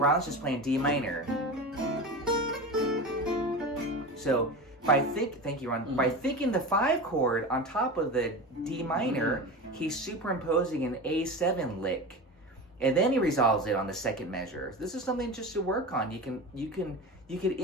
just playing D minor. So thank you, Ron. By thinking the 5 chord on top of the D minor, he's superimposing an A7 lick. And then he resolves it on the second measure. This is something just to work on. You could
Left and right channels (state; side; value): normal; both; correlation 0.27